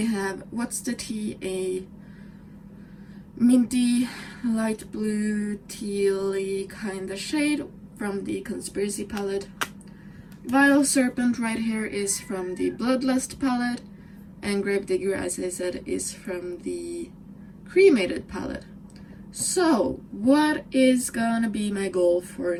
have What's the Tea, a minty light blue tealy kind of shade from the Conspiracy palette. Vile Serpent right here is from the Bloodlust palette, and Gravedigger, as I said, is from the Cremated palette. So, what is gonna be my goal for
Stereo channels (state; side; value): identical; both; correlation 1.00